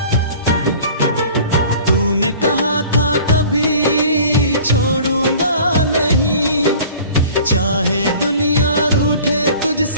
तूने कहा था कभी छोड़ूंगा नहीं, चाहे दुनिया रूठे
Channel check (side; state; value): both; inverted; correlation -0.46